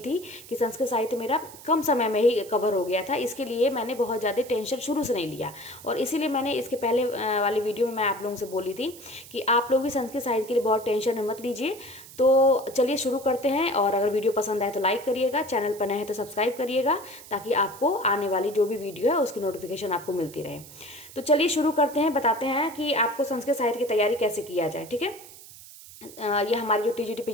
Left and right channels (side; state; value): right; noise; hiss, 18 dB below the sound